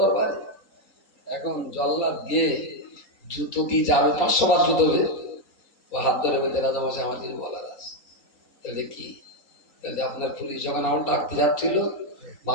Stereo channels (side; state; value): right; late; 3.8 ms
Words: এখন জল্লাদ গিয়ে জুতো দিয়ে যাবে, 500 বার জুতো ও হাত ধরে বেঁধে রাজামশাই আমার কিছু বলার আছে। তাহলে কি, তাহলে আপনার পুলিশ যখন আমার ডাকতে যাচ্ছিল